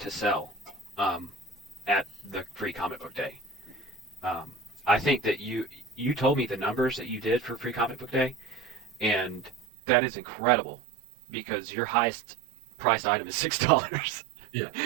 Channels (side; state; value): left; drops out; at 9.7 s